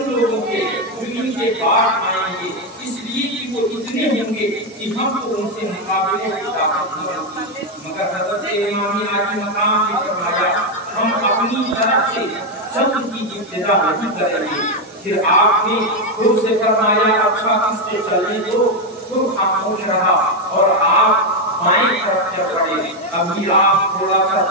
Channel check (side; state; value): both; normal; correlation 0.05